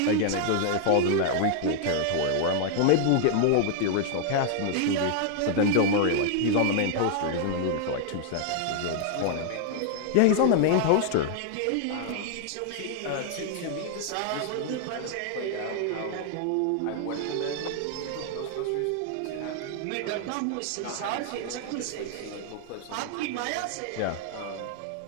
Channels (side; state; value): both; different; correlation 0.00